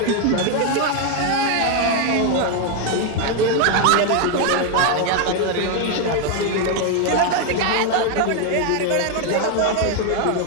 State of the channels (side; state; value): both; different; correlation 0.01